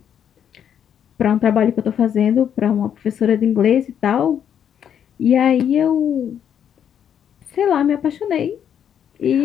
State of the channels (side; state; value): right; quieter; 8.9 dB